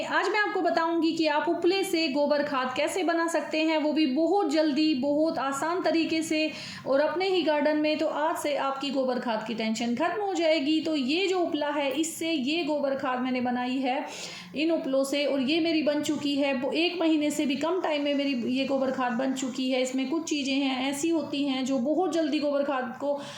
आज मैं आपको बताऊंगी कि आप उपले से गोबर खाद कैसे बना सकते हैं, वो भी बहुत जल्दी, बहुत आसान तरीके से और अपने ही गार्डन में। तो आज से आपकी गोबर खाद की टेंशन खत्म हो जाएगी। तो ये जो उपला है, इससे ये गोबर खाद मैंने बनाई है इन उपलों से, और ये मेरी बन चुकी है। वो 1 महीने से भी कम टाइम में मेरी ये गोबर खाद बन चुकी है। इसमें कुछ चीज़ें हैं ऐसी होती हैं जो बहुत जल्दी गोबर खाद को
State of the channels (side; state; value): both; identical; correlation 1.00